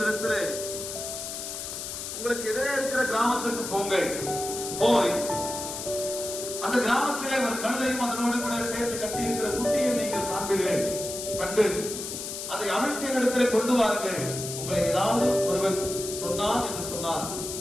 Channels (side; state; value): left; noise; hiss, 7 dB below the sound